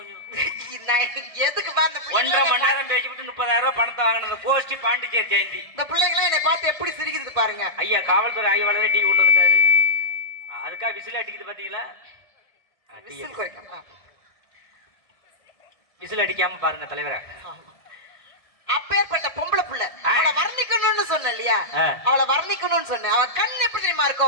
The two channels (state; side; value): late; right; 1.7 ms